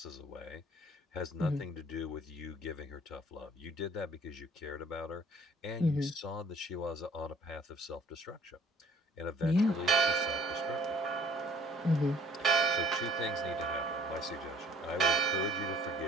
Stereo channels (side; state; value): both; normal; correlation 0.56